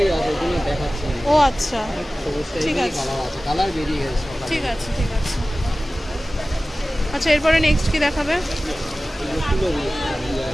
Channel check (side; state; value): both; normal; correlation 0.97